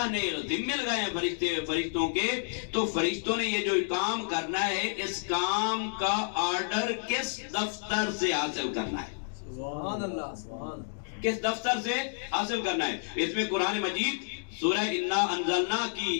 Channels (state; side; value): silent; right; digital silence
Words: نے ذمہ لگائے ہیں فرشتوں کے، تو فرشتوں نے یہ جو کام کرنا ہے اس کام کا آرڈر کس دفتر سے حاصل کرنا ہے؟ سبحان اللہ، سبحان اللہ، کس دفتر سے حاصل کرنا ہے؟ اس میں قرآن مجید سورہ انا انزلنا